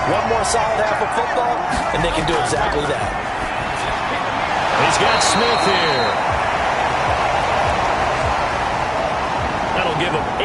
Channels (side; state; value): both; identical; correlation 1.00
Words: One more solid half of football, and they can do exactly that. He's got Smith here. That'll give them